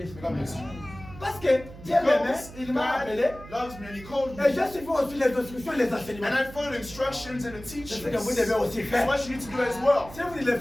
God bless you. Parce que Dieu m'aimait, il m'a God appelé. loves me and He called me. Et j'ai suivi aussi les instructions et les enseignements. And I follow the instructions and the C'est teachings. ce que vous devez aussi That's faire. what you need to do as well. Si vous ne le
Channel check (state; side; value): noise; right; hum, 16 dB below the sound